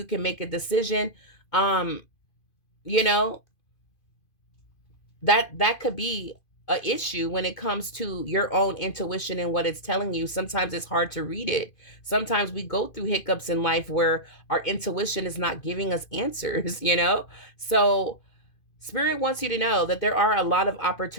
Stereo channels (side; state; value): right; late; 2.5 ms